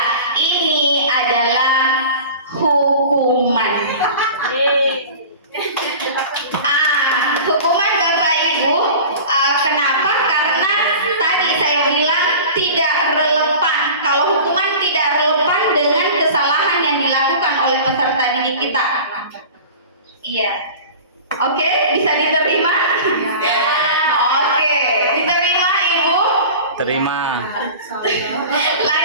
ini adalah hukuman. Hukuman Bapak Ibu, kenapa? Karena tadi saya bilang tidak relevan. Kalau hukuman tidak relevan dengan kesalahan yang dilakukan oleh peserta didik kita. Iya. Oke, bisa diterima? Oke, diterima Ibu? Terima.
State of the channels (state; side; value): inverted; both; correlation -0.37